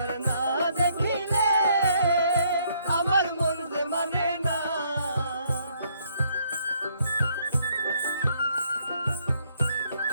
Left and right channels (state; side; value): inverted; both; correlation -0.69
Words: না দেখিলে আমার মন যে মানে না।